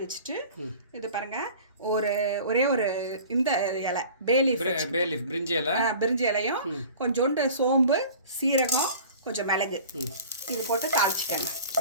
வச்சுட்டு இது பாருங்க, ஒரே ஒரு இந்த இலை பேலீஃப் பிரிஞ்சி இலையும் கொஞ்சோண்டு சோம்பு, சீரகம், கொஞ்சம் மிளகு இது போட்டு தாளிச்சிக்கோங்க.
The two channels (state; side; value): inverted; both; correlation -0.43